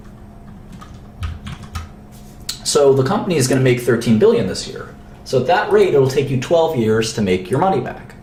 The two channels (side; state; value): both; identical; correlation 1.00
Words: So the company is going to make $13 billion this year. So at that rate, it'll take you 12 years to make your money back.